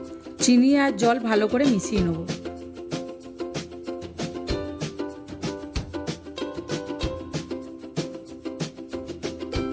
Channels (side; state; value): both; identical; correlation 1.00